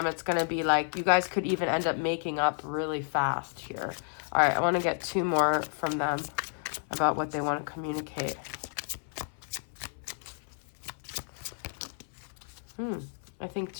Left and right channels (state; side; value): silent; right; 57 dB below the other